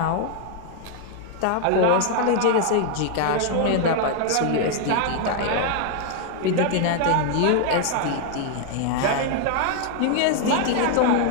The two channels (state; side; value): different; both; correlation 0.00